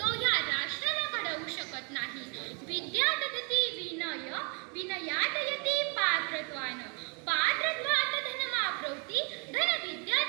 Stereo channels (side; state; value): left; quieter; 34.8 dB